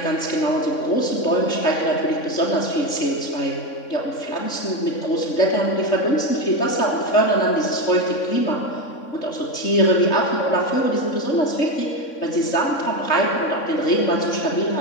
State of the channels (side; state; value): right; late; 3.6 ms